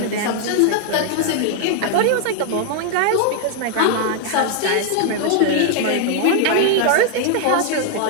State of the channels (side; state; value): both; different; correlation 0.00